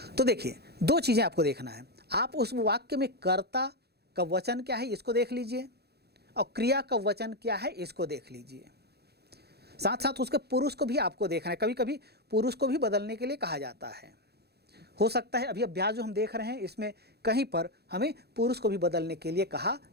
तो देखिए दो चीजें आपको देखना है, आप उस वाक्य में कर्ता का वचन क्या है इसको देख लीजिए और क्रिया का वचन क्या है इसको देख लीजिए। साथ साथ उसके पुरुष को भी आपको देखना है, कभी कभी पुरुष को भी बदलने के लिए कहा जाता है। हो सकता है अभी अभ्यास जो हम देख रहे हैं इसमें कहीं पर हमें पुरुष को भी बदलने के लिए कहा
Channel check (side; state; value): left; late; 0.47 ms